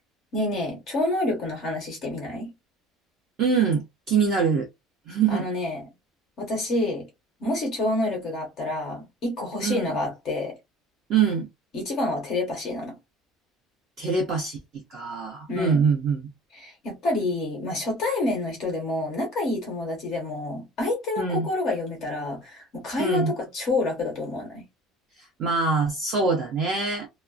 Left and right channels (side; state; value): both; normal; correlation 0.42